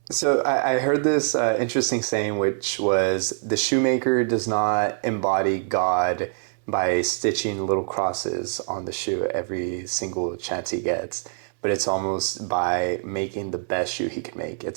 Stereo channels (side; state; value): left; silent; 62 dB below the other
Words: So I heard this interesting saying, which was the shoemaker does not embody God by stitching little crosses on the shoe every single chance he gets, but it's almost by making the best shoe he can make.